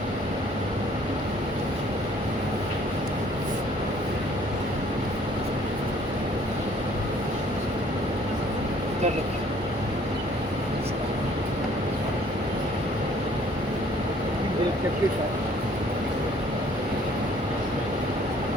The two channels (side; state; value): both; normal; correlation 0.58